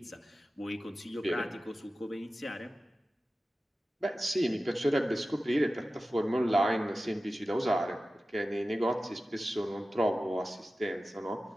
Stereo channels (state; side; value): normal; both; correlation 0.95